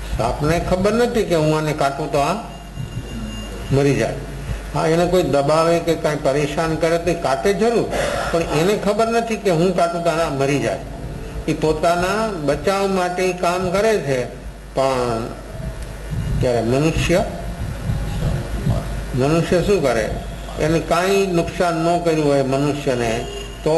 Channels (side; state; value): both; identical; correlation 1.00